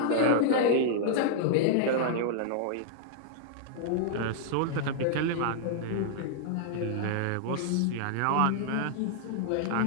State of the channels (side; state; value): both; different; correlation -0.01